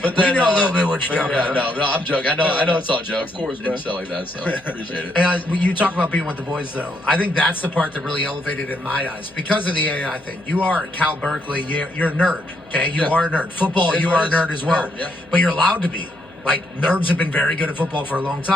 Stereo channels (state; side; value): noise; left; hum, 28 dB below the sound